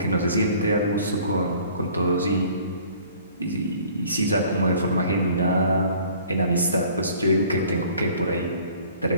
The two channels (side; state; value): both; inverted; correlation -0.52